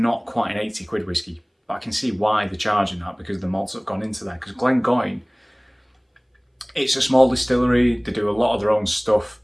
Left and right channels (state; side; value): identical; both; correlation 1.00